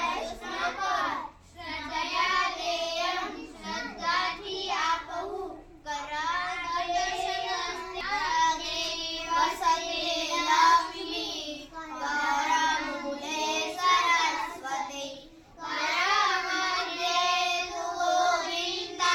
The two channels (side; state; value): both; identical; correlation 1.00